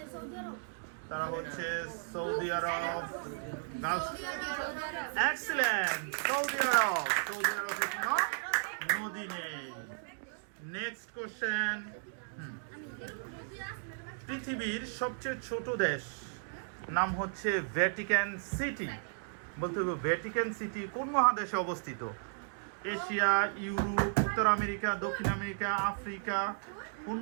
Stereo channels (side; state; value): left; silent; digital silence